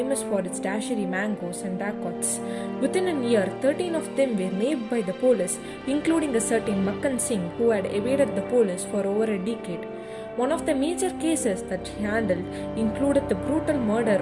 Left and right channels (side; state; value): both; identical; correlation 1.00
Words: for its dashery mangoes and dacoits. Within a year, 13 of them were named by the police, including a certain Makkan Singh who had evaded the police for over a decade. One of the major cases that she handled included the brutal murder